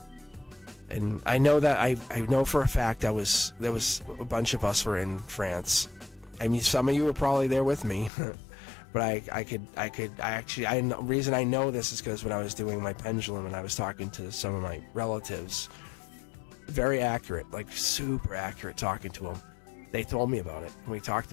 and I know that I know for a fact there was a bunch of us were in France. I mean, some of you were probably there with me, but the reason I know this is because when I was doing my pendulum and I was talking to some of my relatives, very accurate, like super accurate, talking to them. They told me about it, and we talked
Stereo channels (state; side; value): drops out; right; at 8.1 s